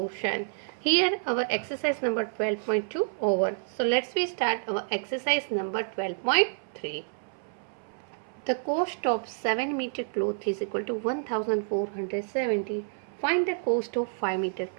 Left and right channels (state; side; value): silent; left; 59 dB below the other